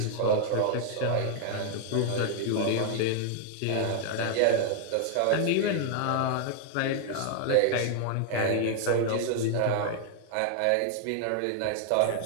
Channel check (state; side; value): different; both; correlation 0.00